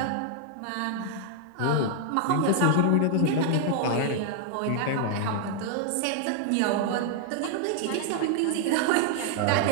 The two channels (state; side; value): different; both; correlation 0.00